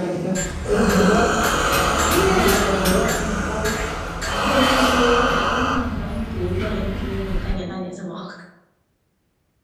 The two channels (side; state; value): both; identical; correlation 1.00